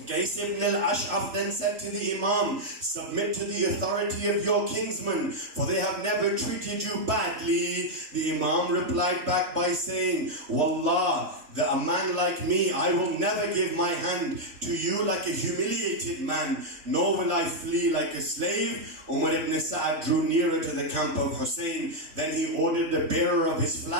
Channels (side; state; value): left; late; 3.1 ms